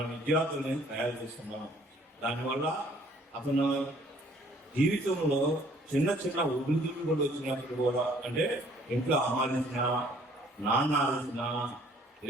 విద్యార్థులని తయారు చేస్తున్నాం. దానివల్ల అతను జీవితంలో చిన్న ఒడిదుడుకులు కూడా వచ్చినప్పుడు కూడా, అంటే ఇంట్లో అమ్మాలించిన, నాన్న ఆలోచన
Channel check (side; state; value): both; normal; correlation 0.59